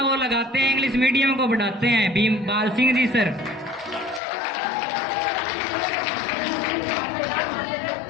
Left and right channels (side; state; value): right; drops out; at 4.2 s